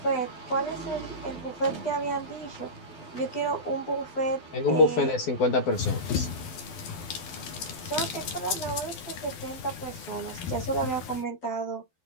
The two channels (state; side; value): late; right; 12 ms